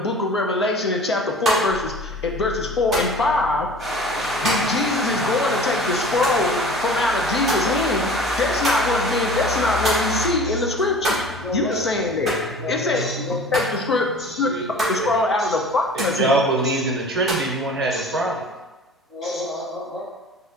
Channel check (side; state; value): both; normal; correlation 0.43